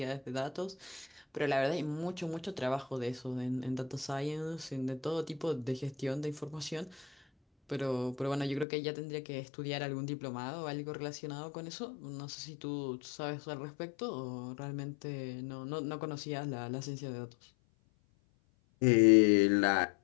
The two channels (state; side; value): drops out; right; at 8.7 s